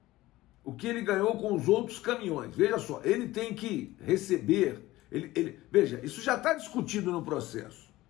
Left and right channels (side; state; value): right; quieter; 17.5 dB